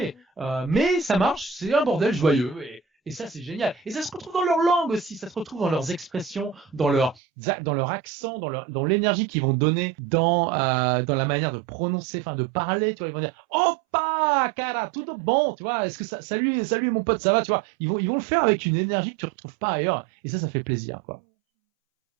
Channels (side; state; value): left; drops out; at 7.2 s